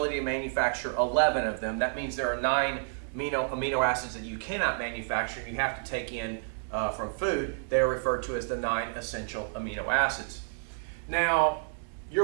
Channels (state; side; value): silent; left; digital silence